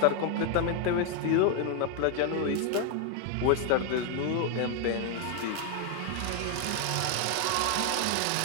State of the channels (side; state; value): both; different; correlation 0.00